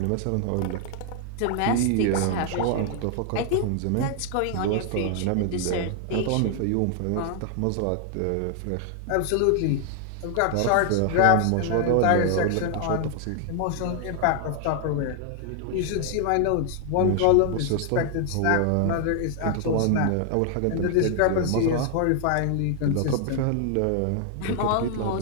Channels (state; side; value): different; both; correlation 0.00